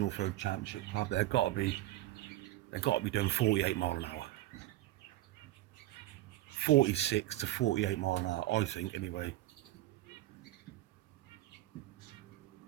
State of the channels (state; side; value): quieter; left; 15.7 dB